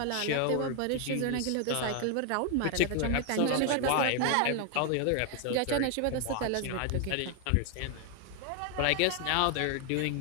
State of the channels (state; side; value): different; both; correlation 0.01